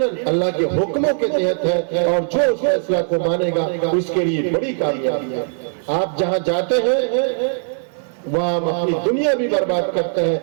اللہ کے حکموں کے تحت ہے، اور جو اس فیصلہ کو مانے گا اس کے لیے بڑی کامیابی ہے۔ آپ جہاں جاتے ہیں وہاں اپنی دنیا بھی برباد کرتے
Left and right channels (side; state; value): left; silent; 64 dB below the other